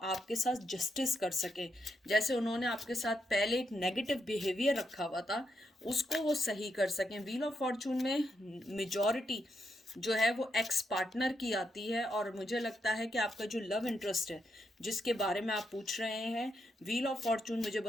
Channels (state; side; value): normal; both; correlation 0.81